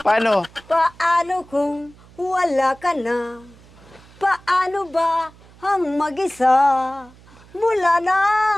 Paano kung wala ka na? Paano ba ang mag-isa? Mula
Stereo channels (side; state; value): right; noise; hum, 25 dB below the sound